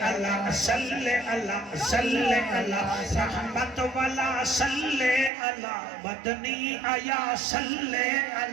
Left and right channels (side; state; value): left; drops out; at 5.3 s